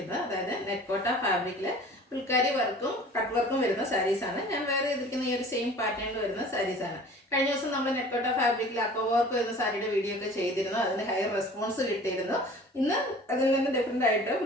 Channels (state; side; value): normal; both; correlation 0.45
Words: അതായത് നെറ്റ്കോട്ട ഫാബ്രിക്കിൽ ഫുൾക്കാരി വർക്കും കട്ട് വർക്കും വരുന്ന സാരീസാണ്. ഞാൻ വേറെ ചെയ്തിരിക്കുന്ന ഈ ഒരു സെയിം പാറ്റേണിൽ വരുന്ന സാരീസാണ്. കഴിഞ്ഞ ദിവസം നമ്മൾ നെറ്റ്കോട്ട ഫാബ്രിക്കിൽ അക്കോ വർക്ക് വരുന്ന സാരിയുടെ വീഡിയോ ഒക്കെ ചെയ്തിരുന്നു. അതിന് ഹൈ റെസ്പോൺസ് കിട്ടിയിരുന്നു. ഇന്ന് അതിൽ നിന്ന് ഡിഫറെൻ്റ് ആയിട്ട്